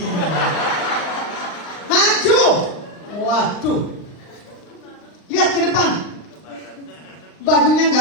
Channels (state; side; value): late; right; 39 ms